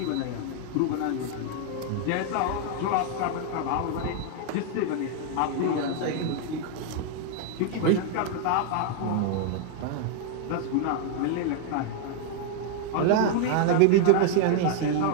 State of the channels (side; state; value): both; different; correlation 0.00